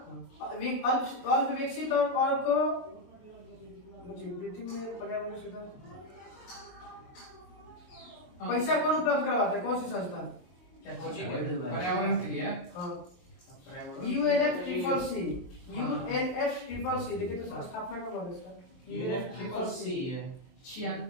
अल्प विकसित और को पृथ्वी में पर्यावरण सुधार पैसा कौन उपलब्ध करवाता है? कौन सी संस्था? पर्यावरण के लिए UNFCCC। UNFCCC देखिए तो स्थापना कब हुआ इसका? UNFCCC है। छियान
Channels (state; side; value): late; right; 23 ms